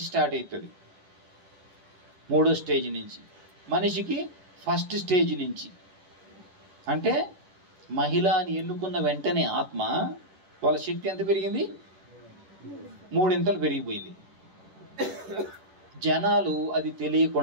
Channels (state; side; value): late; left; 10 ms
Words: స్టార్ట్ అవుతుంది. 3వ స్టేజ్ నుంచి మనిషికి 1st స్టేజ్ నుంచి, అంటే మహిళ అని ఎన్నుకున్న వెంటనే ఆత్మ వాళ్ళ శక్తి ఎంత పెరిగింది? 3 పెరిగిపోయింది. జనాలు అది